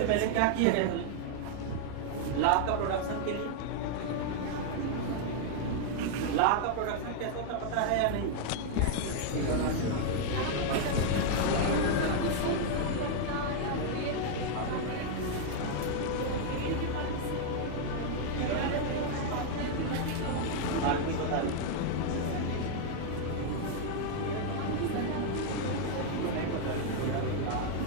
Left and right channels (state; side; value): different; both; correlation 0.00